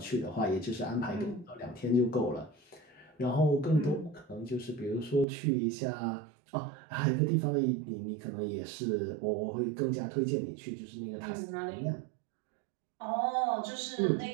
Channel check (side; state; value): left; drops out; at 5.2 s